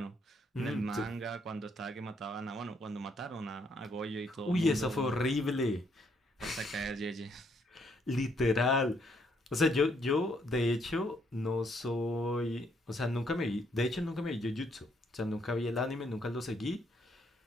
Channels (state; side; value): normal; both; correlation 0.71